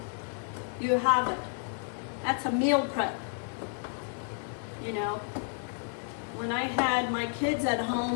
you have it. That's a meal prep. You know, when I had my kids at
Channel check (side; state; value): right; silent; 57 dB below the other